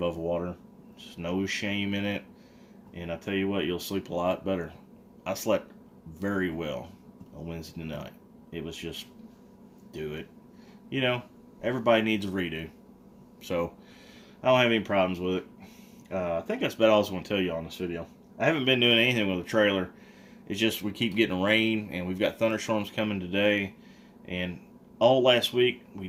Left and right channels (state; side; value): identical; both; correlation 1.00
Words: water, there's no shame in it. And I tell you what, you'll sleep a lot better. I slept very well on Wednesday night. It was just, do it. Everybody needs a redo. So, I don't have any problems with it. I think that's about all I was going to tell you on this video. I haven't been doing anything with the trailer. It's just we keep getting rain, and we've got thunderstorms coming today. And all last week, we